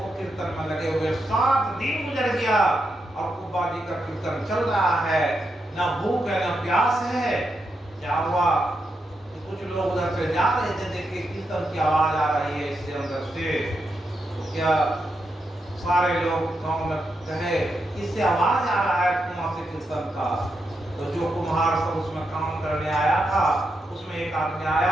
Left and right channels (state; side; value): normal; both; correlation 0.84